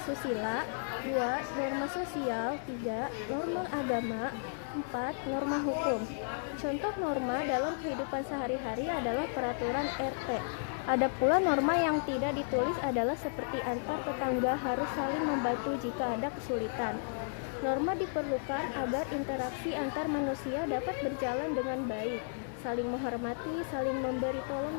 2. Norma sosial, 3. Norma agama, 4. Norma hukum. Contoh norma dalam kehidupan sehari-hari adalah peraturan RT. Ada pula norma yang tidak ditulis adalah seperti antar tetangga harus saling membantu jika ada kesulitan. Norma diperlukan agar interaksi antar manusia dapat berjalan dengan baik, saling menghormati, saling memberi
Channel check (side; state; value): right; silent; 55 dB below the other